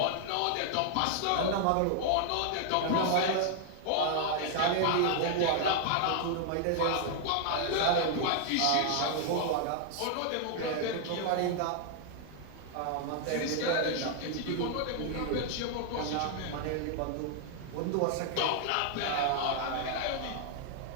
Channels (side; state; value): both; different; correlation 0.00